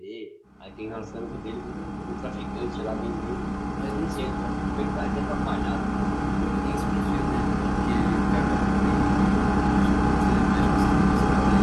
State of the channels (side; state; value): both; identical; correlation 1.00